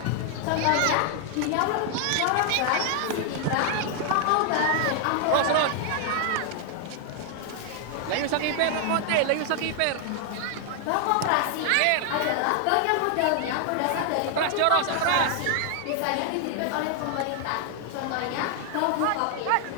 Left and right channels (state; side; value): different; both; correlation 0.00